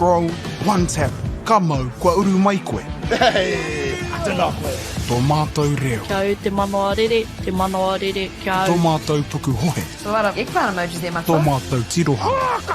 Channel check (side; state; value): both; identical; correlation 1.00